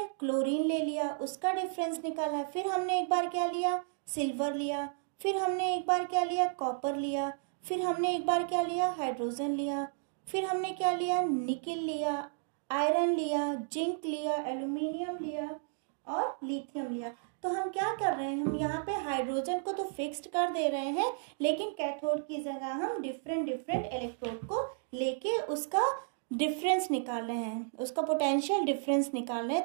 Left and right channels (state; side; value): silent; left; digital silence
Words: क्लोरीन ले लिया, उसका डिफरेंस निकाला। फिर हमने एक बार क्या लिया, सिल्वर लिया। फिर हमने एक बार क्या लिया, कॉपर लिया। फिर हमने एक बार क्या लिया, हाइड्रोजन लिया। फिर हमने क्या लिया, निकेल लिया, आयरन लिया, जिंक लिया, एल्यूमिनियम लिया और लिथियम लिया। तो हम क्या कर रहे हैं, हम यहाँ पे हाइड्रोजन को तो फिक्स्ड कर दे रहे हैं, लेकिन कैथोड की जगह हम डिफरेंट इलेक्ट्रोड को लेके उसका डिफरेंस निकाल रहे हैं, उसका पोटेंशियल डिफरेंस निकाल रहे हैं।